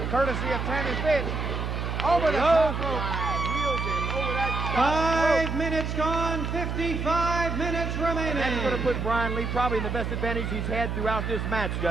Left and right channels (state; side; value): noise; right; hum, 3 dB below the sound